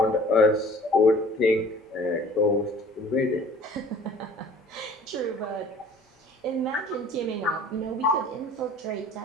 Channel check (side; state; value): both; normal; correlation 0.49